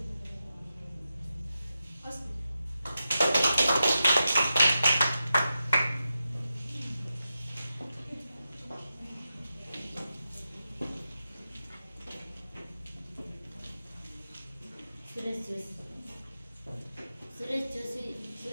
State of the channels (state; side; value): inverted; both; correlation -0.90